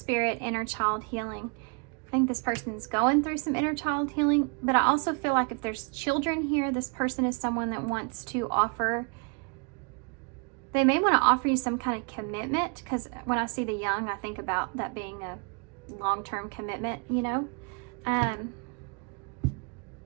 inner child healing. I think this person's going through some inner child healing, but I also feel like if there's children here, this person is someone that wants to offer, they may want to offer you some kind of commitment, because when I see the young, I think about that being a long-term commitment, you know.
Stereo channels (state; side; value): quieter; left; 35.3 dB